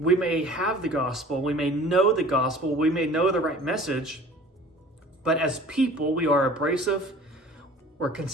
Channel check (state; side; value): normal; both; correlation 0.46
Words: may have the gospel, we may know the gospel, we may know the right message, but as people, we are abrasive, we're